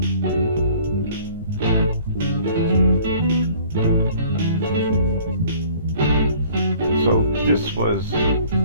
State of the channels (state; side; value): inverted; both; correlation -0.53